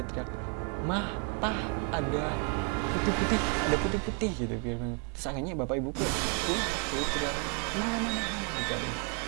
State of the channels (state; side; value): quieter; left; 37.9 dB